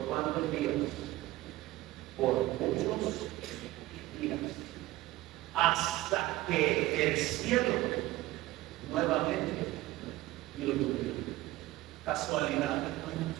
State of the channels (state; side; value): quieter; left; 17.6 dB